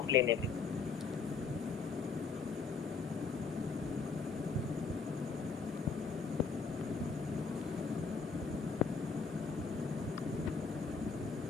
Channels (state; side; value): quieter; right; 4.9 dB